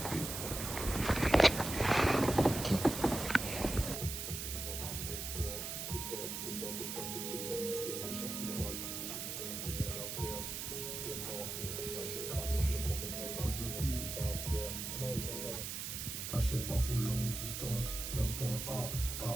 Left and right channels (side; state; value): right; noise; hiss, 5 dB below the sound